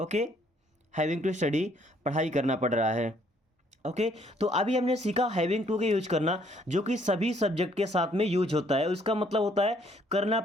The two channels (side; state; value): both; normal; correlation 0.65